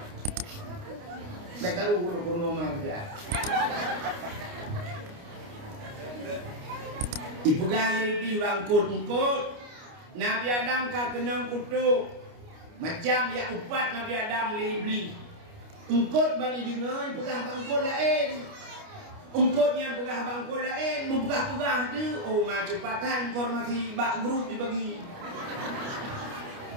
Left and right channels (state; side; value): late; left; 29 ms